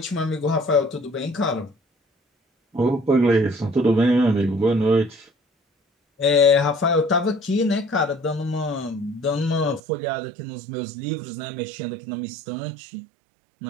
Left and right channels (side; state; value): left; drops out; at 9.8 s